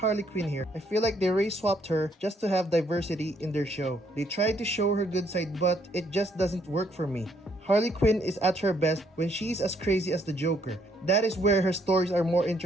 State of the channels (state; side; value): normal; both; correlation 0.69